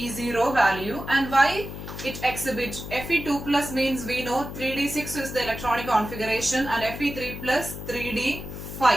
value. And why it exhibits? Fe2 plus means we know 3d6 is the electronic configuration and Fe3 plus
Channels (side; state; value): left; noise; hum, 9 dB below the sound